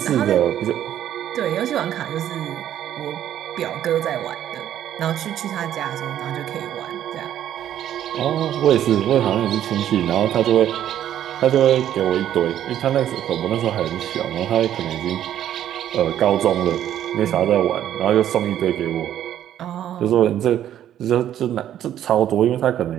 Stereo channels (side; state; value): left; quieter; 11.1 dB